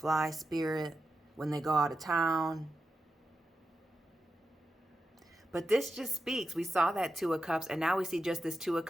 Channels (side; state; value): both; normal; correlation 0.89